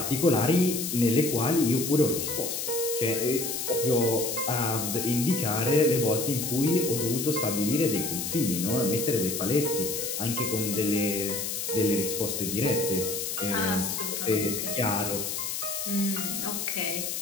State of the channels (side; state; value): left; noise; hiss, 3 dB below the sound